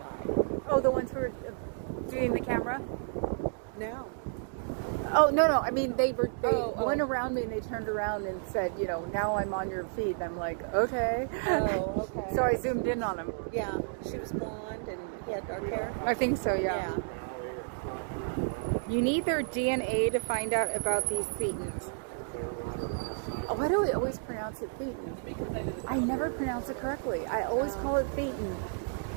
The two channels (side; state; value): left; silent; digital silence